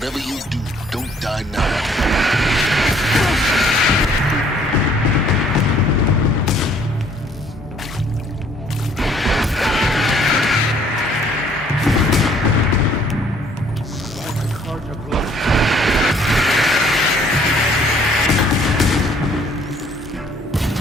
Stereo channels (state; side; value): normal; both; correlation 0.60